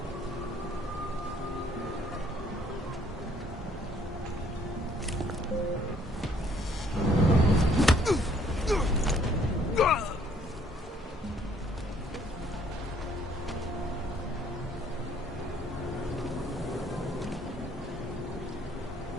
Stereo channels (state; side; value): normal; both; correlation 0.63